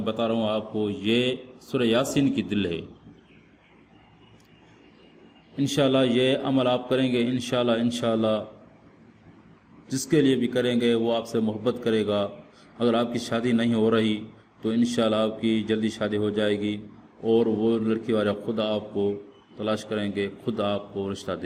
بتا رہا ہوں آپ کو، یہ سورہ یاسین کی دل ہے۔ انشاءاللہ یہ عمل آپ کریں گے، انشاءاللہ جس کے لیے بھی کریں گے وہ آپ سے محبت کرے گا۔ اگر آپ کی شادی نہیں ہو رہی تو انشاءاللہ آپ کی جلدی شادی ہو جائے گی، اور وہ لڑکی والے خود آپ کو تلاش کریں گے، خود آپ کو رشتہ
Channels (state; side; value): identical; both; correlation 1.00